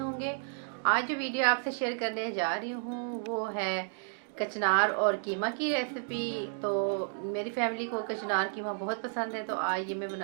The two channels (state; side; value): silent; left; digital silence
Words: आज जो वीडियो आपसे शेयर करने जा रही हूँ वो है कचनार और कीमा की रेसिपी। तो मेरी फैमिली को कचनार कीमा बहुत पसंद है, तो आज ये मैं